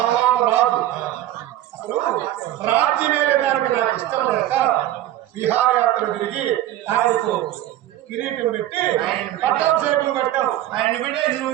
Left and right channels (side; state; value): left; quieter; 13.8 dB